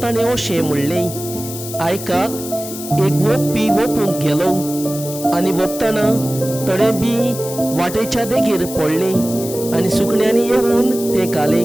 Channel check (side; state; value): left; noise; hiss, 10 dB below the sound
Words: ताणें अशें म्हणलें, आयकात, एक वोपपी वोपूंक गेलो आनी वोपतना थोडें बी वाटेच्या देगेर पडलें आनी सुकण्यांनी येवन तें